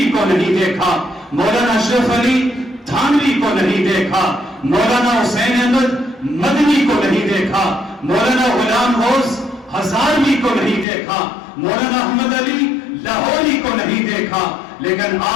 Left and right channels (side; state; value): right; drops out; at 10.9 s